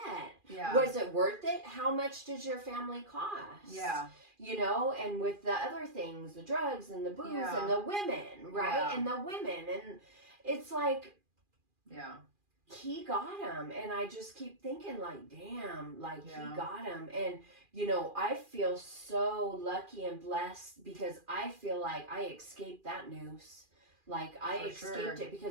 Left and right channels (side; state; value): left; late; 2.4 ms